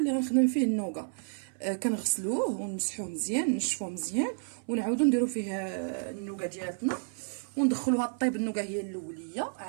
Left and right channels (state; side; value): silent; left; 57 dB below the other